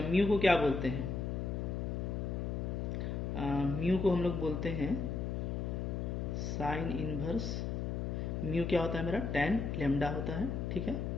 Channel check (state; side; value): noise; left; hum, 2 dB below the sound